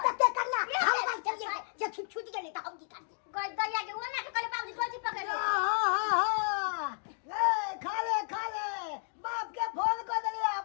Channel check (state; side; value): silent; right; 56 dB below the other